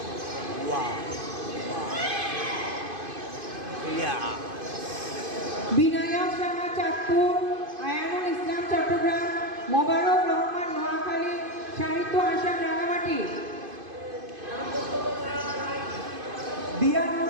বিনায়ক শাহ চাঁদপুর, আয়ানুল ইসলাম চট্টগ্রাম, মোবারক রহমান নোয়াখালী, সাহিত্য আসাম রাঙামাটি।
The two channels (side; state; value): left; late; 2.5 ms